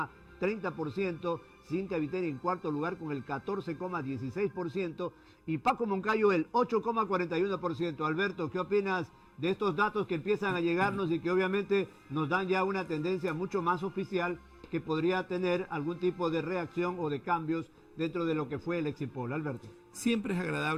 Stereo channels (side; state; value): both; identical; correlation 1.00